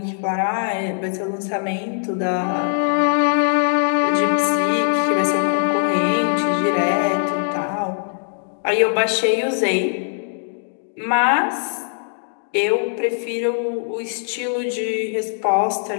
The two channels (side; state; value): right; silent; digital silence